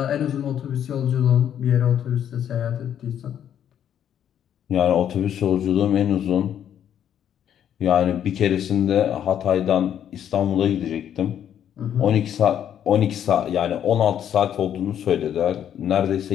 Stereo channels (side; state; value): right; quieter; 9.7 dB